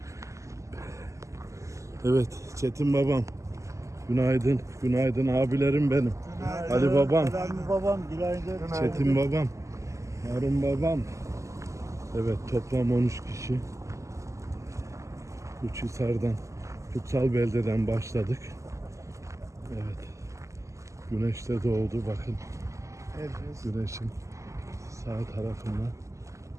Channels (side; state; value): left; late; 0.15 ms